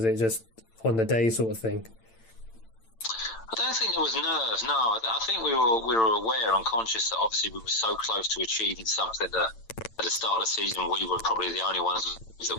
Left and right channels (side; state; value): right; late; 8.9 ms